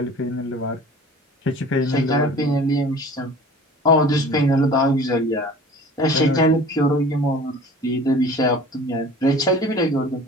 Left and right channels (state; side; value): normal; both; correlation 0.44